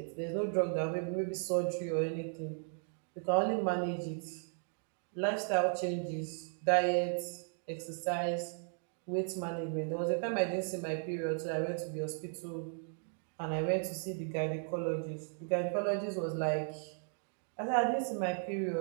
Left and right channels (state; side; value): silent; left; 54 dB below the other